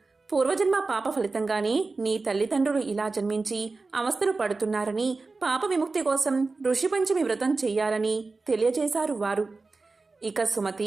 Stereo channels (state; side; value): quieter; left; 3.8 dB